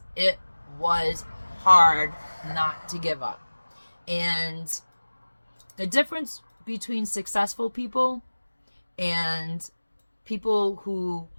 it was hard not to give up. And the difference between successful people and people who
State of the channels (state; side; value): inverted; both; correlation -1.00